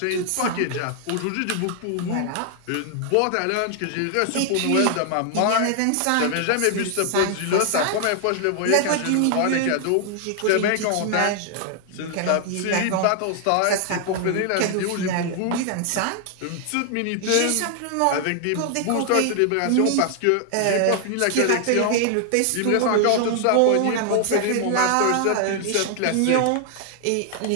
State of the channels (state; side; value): different; both; correlation 0.00